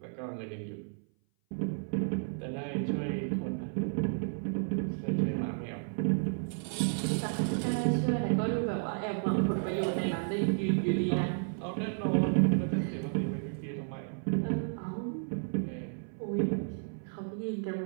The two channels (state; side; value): silent; left; 56 dB below the other